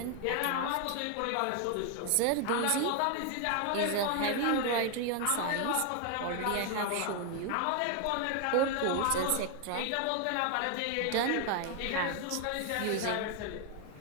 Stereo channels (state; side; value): different; both; correlation 0.01